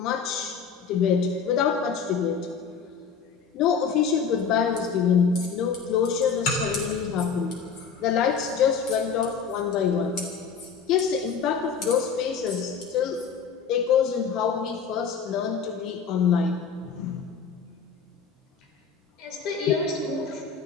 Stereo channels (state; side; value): quieter; right; 6.2 dB